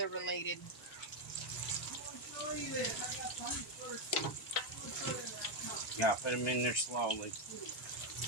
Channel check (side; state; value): both; normal; correlation 0.03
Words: related. I'm gonna show you this. I got plenty first. I'm gonna show you that. Yeah, put them in there slowly.